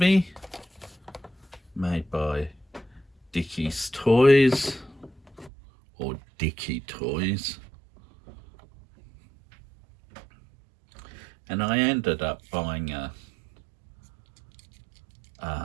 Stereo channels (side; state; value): left; drops out; at 5.5 s